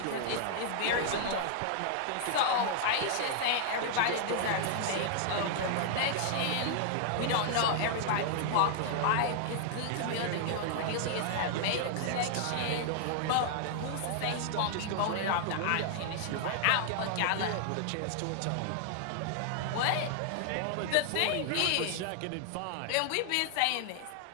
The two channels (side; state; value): both; different; correlation 0.00